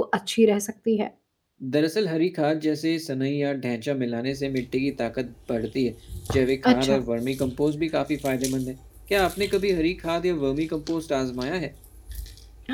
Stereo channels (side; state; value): both; identical; correlation 1.00